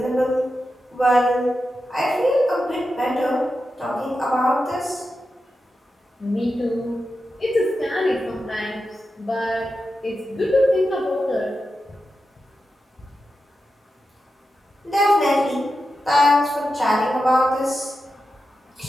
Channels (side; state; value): both; normal; correlation 0.90